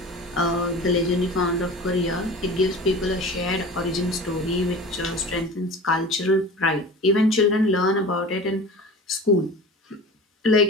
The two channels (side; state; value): both; normal; correlation 0.36